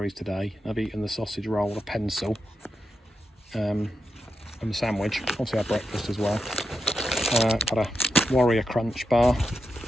today, I've eaten the sausage roll, a pencil, and the sandwich. Obviously I had breakfast as well. Got a Warrior Crunch bar.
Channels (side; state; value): both; normal; correlation 0.87